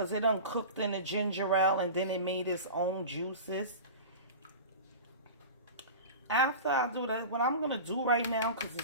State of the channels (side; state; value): both; inverted; correlation -0.33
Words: it done cooked in the ginger ale and then it made its own juices. After I do that, what I'm going to do right now, because